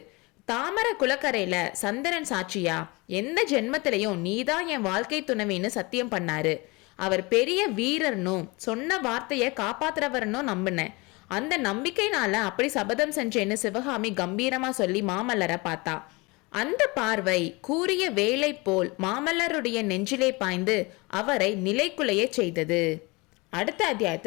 தாமர குளக்கரையில சந்திரன் சாட்சியா எந்த ஜென்மத்திலையும் நீதான் என் வாழ்க்கை துணைவின்னு சத்தியம் பண்ணாரு. அவர் பெரிய வீரர்னும் சொன்ன வார்த்தையை காப்பாத்துறவர்னும் நம்பினேன். அந்த நம்பிக்கைனால அப்படி சபதம் செஞ்சேன்னு சிவகாமி கம்பீரமா சொல்லி மாமல்லரை பார்த்தா. அந்த பார்வை கூறிய வேலை போல் மாமல்லருடைய நெஞ்சிலே பாய்ந்து அவரை நிலைக்குலைய செய்தது. அடுத்த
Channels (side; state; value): right; quieter; 25.7 dB